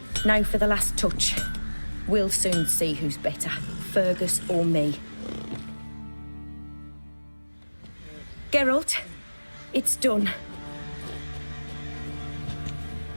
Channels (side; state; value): both; inverted; correlation -1.00